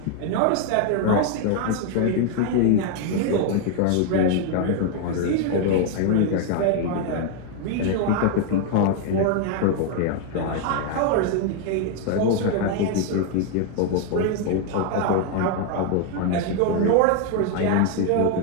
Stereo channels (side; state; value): both; different; correlation 0.01